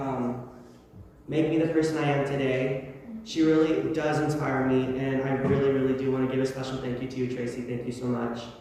make me the person I am today. She really does inspire me, and I really, really do want to give a special thank you to you, Tracy. Thank you so much.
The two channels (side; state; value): both; identical; correlation 1.00